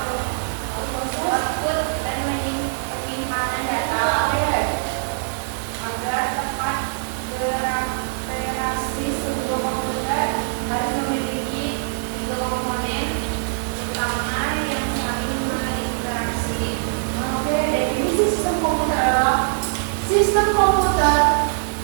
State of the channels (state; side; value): silent; left; digital silence